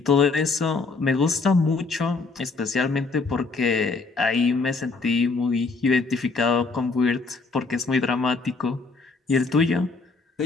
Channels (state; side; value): quieter; right; 4.1 dB